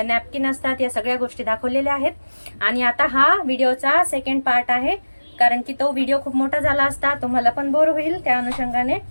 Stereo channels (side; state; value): both; inverted; correlation -1.00